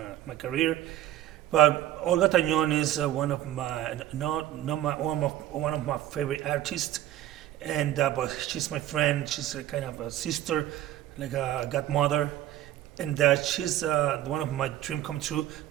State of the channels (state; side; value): quieter; left; 13.2 dB